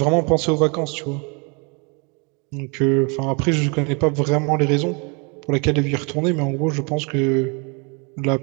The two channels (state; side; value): quieter; left; 32.7 dB